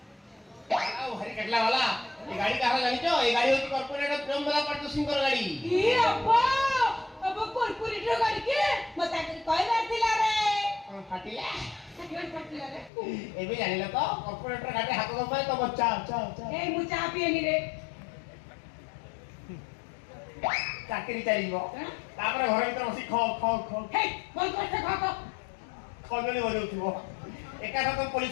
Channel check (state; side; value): drops out; right; at 12.9 s